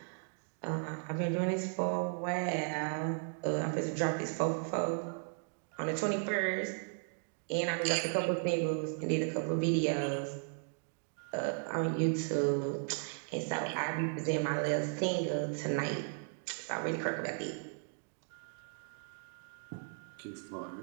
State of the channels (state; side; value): silent; left; 54 dB below the other